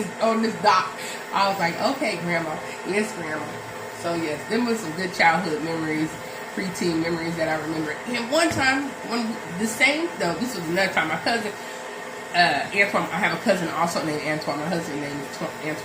dock." I was like, "Okay, Grandma." Yes, Grandma. So yes, them was some good childhood memories, preteen memories that I remember. And one time, this was another time, my cousin, Antoine, I have a cousin also named Antoine. My husband's name is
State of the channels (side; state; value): both; identical; correlation 1.00